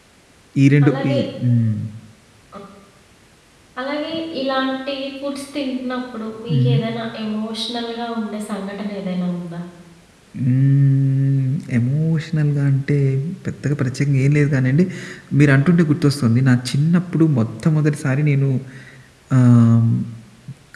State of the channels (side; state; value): both; identical; correlation 1.00